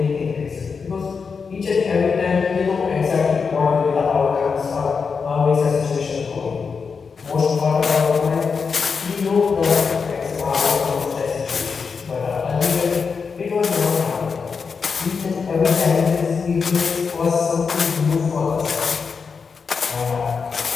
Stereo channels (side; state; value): right; quieter; 5.4 dB